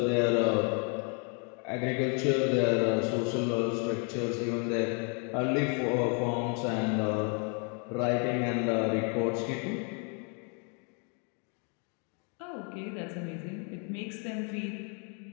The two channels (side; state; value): right; quieter; 38.3 dB